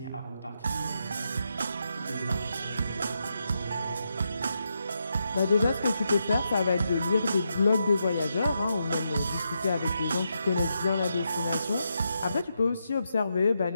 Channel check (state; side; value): inverted; both; correlation -0.84